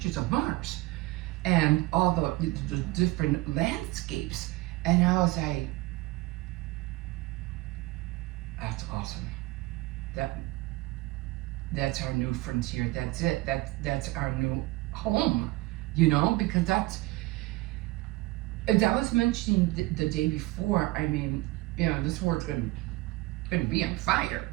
of Mars and all the different landscapes. And I was like, that's awesome. That's our new frontier. That's it. That's our new home. Because as I was mentioning the day before, I mean, this world's gonna be on fire,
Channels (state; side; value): quieter; left; 20.1 dB